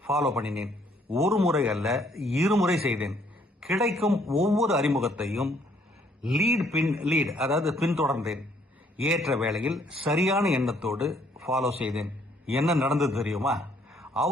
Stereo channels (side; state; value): both; normal; correlation 0.65